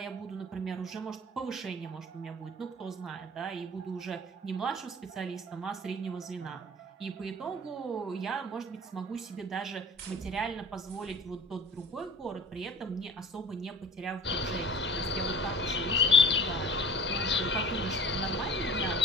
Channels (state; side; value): normal; both; correlation 0.44